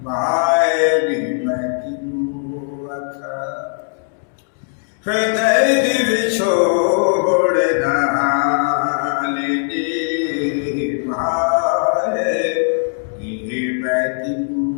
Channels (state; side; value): silent; right; digital silence